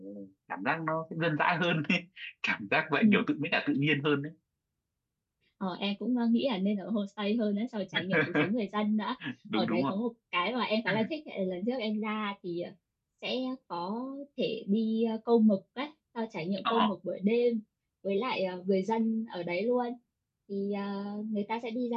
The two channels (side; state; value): both; identical; correlation 1.00